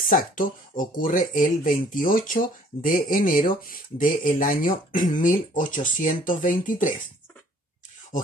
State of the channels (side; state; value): both; normal; correlation 0.57